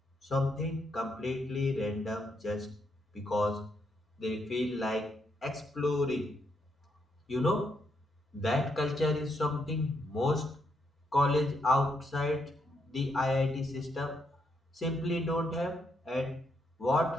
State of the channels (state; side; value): normal; both; correlation 0.78